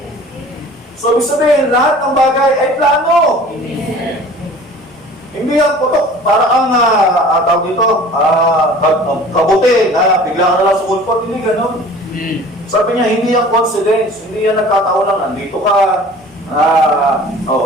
So, ibig sabihin, lahat ng bagay ay plano. Amen. Hindi yan putok. Para ang tawag dito, kabuti na bigla ka na lang sumulpot. Hindi ganun. Sabi niya, hindi yan coincidence. Hindi yan nagkataon lang. Nandito ka,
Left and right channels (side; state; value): both; normal; correlation 0.45